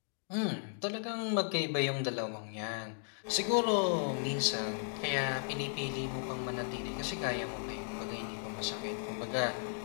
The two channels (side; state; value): right; silent; digital silence